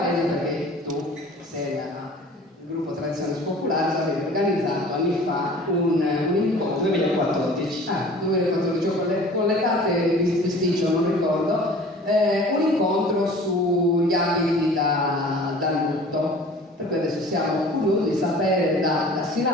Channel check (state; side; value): normal; both; correlation 0.45